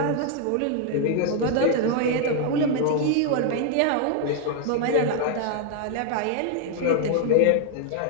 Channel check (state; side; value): different; both; correlation 0.00